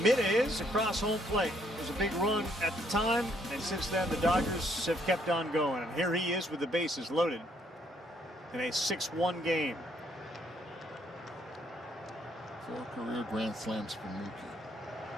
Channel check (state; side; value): normal; both; correlation 0.69